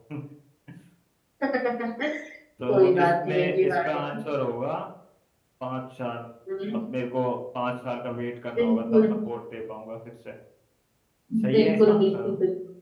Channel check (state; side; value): identical; both; correlation 1.00